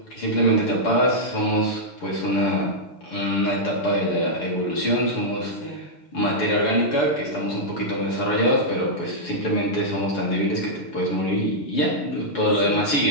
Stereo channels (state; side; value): late; right; 6.9 ms